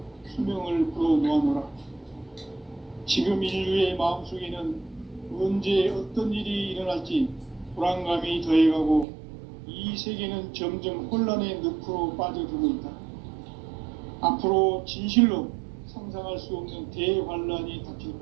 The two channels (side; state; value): left; drops out; at 9.1 s